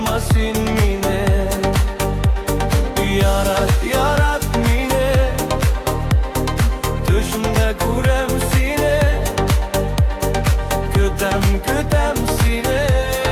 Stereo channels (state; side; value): identical; both; correlation 1.00